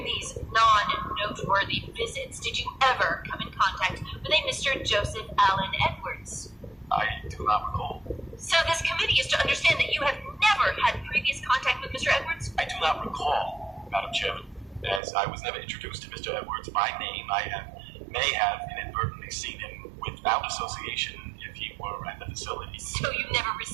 these non-noteworthy visits, did you ever come in contact with a Mr. Joseph Allen Edwards? I do not recall. So this committee is to understand that you have never had previous contact with Mr. Edwards? I do not recall, Madam Chairman, as I was never introduced to Mr. Edwards by name. I may have inadvertently seen him without association if he were at the facility. So you never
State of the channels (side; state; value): left; drops out; at 15.0 s